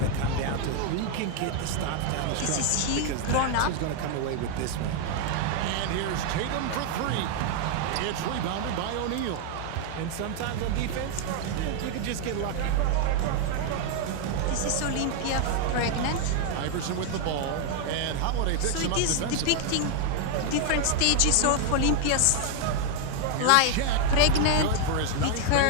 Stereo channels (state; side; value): different; both; correlation 0.00